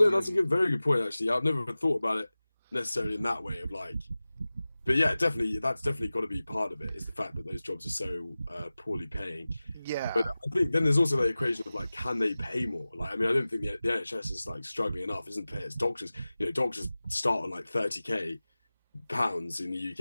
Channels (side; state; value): both; inverted; correlation -0.97